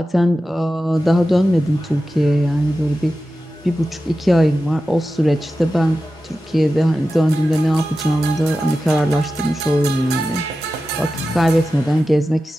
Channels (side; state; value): both; normal; correlation 0.93